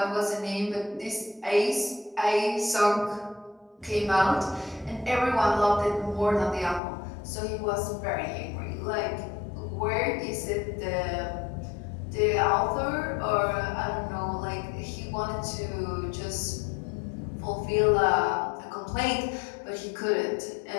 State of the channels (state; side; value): drops out; right; at 6.8 s